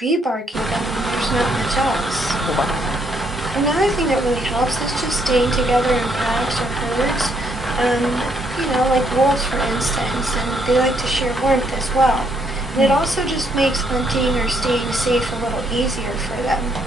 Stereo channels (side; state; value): both; normal; correlation 0.71